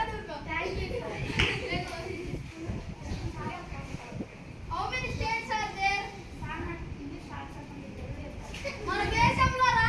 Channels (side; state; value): both; identical; correlation 1.00